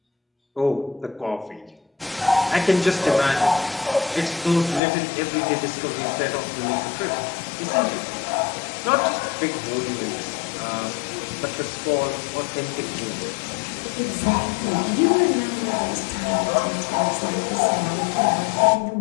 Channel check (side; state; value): right; drops out; at 4.8 s